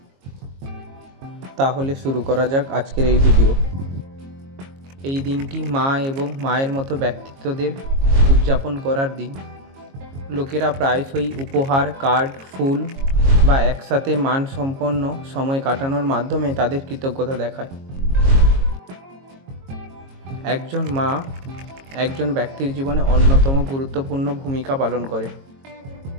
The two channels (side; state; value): left; late; 22 ms